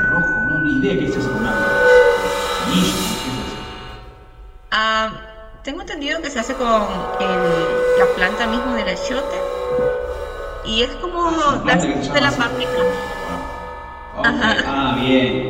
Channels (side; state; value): both; identical; correlation 1.00